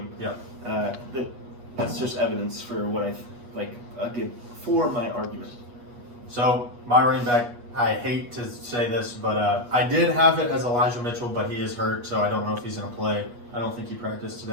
Yeah. That's just evidence for what I give for my argument. So my running back, I hate to say this, but I did have it as Elijah Mitchell, but he is hurt, so I don't know if he's going to play. I don't think he practiced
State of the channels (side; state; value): left; late; 8.3 ms